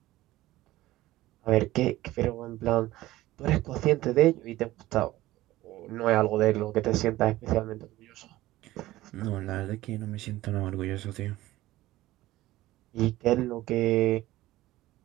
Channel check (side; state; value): left; quieter; 16.6 dB